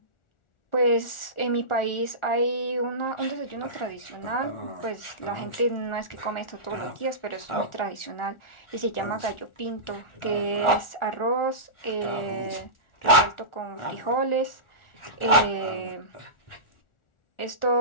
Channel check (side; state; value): right; late; 1.4 ms